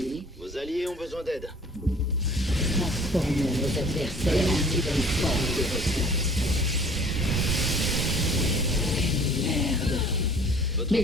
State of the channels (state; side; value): normal; both; correlation 0.50